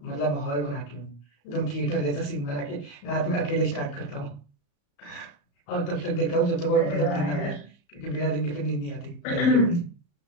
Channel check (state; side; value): late; right; 34 ms